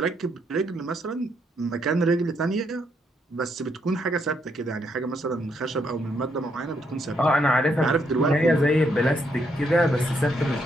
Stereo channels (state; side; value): normal; both; correlation 0.75